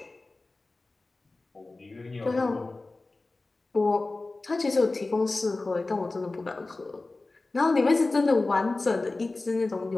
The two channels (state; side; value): quieter; right; 3.3 dB